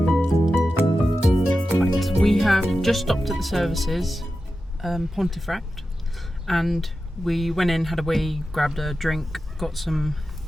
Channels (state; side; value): normal; both; correlation 0.92